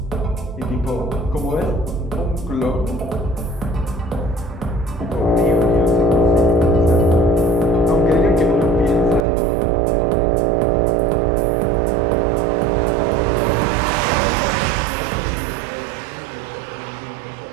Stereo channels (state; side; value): drops out; left; at 9.2 s